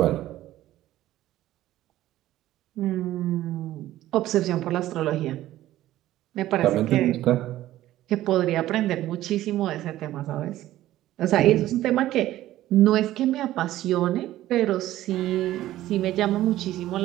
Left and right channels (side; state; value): left; quieter; 14.5 dB